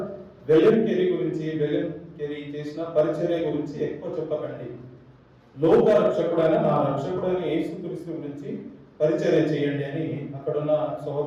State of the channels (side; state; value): both; identical; correlation 1.00